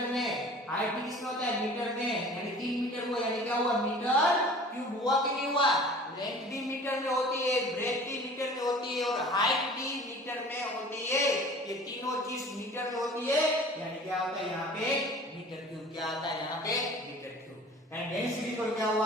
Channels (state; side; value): normal; both; correlation 0.45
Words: में। हाइट भी किसमें होता है, मीटर में, यानी 3 मीटर हुआ, यानी क्या हुआ, मीटर क्यूब हुआ कि नहीं हुआ। लेंथ भी मीटर में होती है, ब्रेथ भी मीटर में होती है और हाइट भी मीटर में होती है। ये तीनों चीज मीटर में होती है, यानी क्या होता है यहाँ पे मीटर क्यूब। क्या आता है यहाँ पे, मीटर क्यूब। एंड डेंसिटी को क्या